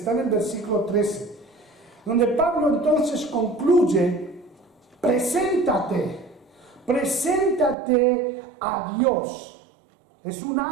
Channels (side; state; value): left; drops out; at 7.8 s